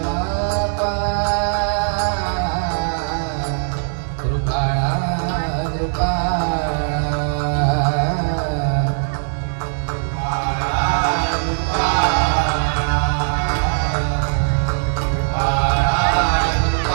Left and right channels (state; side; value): silent; left; 66 dB below the other